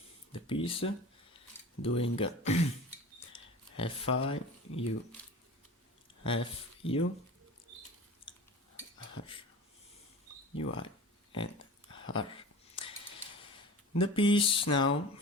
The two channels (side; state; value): both; normal; correlation 0.36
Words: the piece, doing Fi, U, F, U, R, UI, and R. The piece now